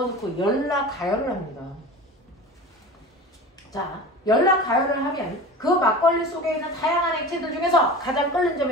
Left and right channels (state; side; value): normal; both; correlation 0.34